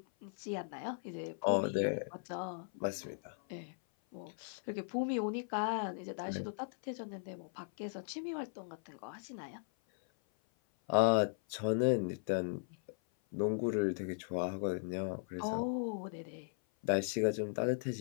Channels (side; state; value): right; silent; 53 dB below the other